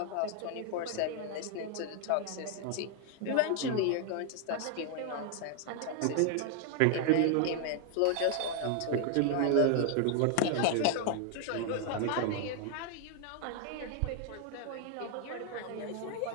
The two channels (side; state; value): both; different; correlation 0.00